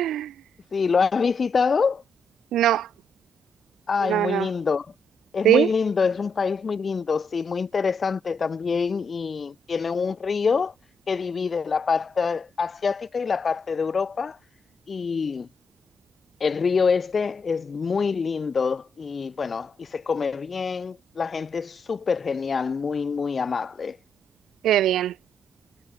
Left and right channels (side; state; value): both; normal; correlation 0.78